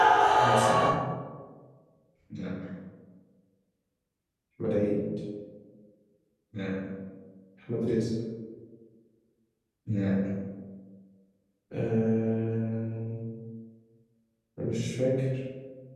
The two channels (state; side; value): identical; both; correlation 1.00